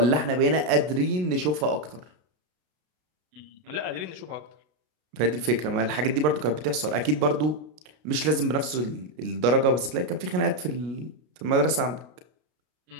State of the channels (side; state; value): left; late; 33 ms